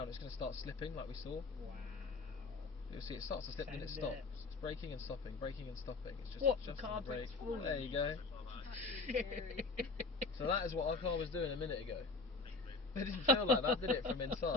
It's going to start slipping like we saw. Wow. You'll see it starts to slip, then it Send stops. it. It's braking and stopping, braking and stopping. It's just What? The adjusting car brake. brakes falling? There you go. So that is what our car was doing a minute ago. It didn't feel like that, did it, from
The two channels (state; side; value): quieter; right; 3.8 dB